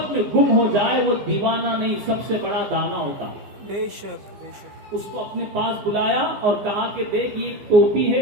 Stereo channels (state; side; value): late; left; 15 ms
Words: میں گم ہو جائے وہ دیوانہ نہیں، سب سے بڑا دانا ہوتا ہے. بے شک. بے شک. اس کو اپنے پاس بلایا اور کہا کہ دیکھ یہ ٹوپی